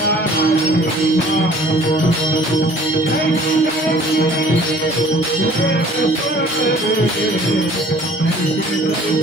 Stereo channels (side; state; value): both; normal; correlation 0.52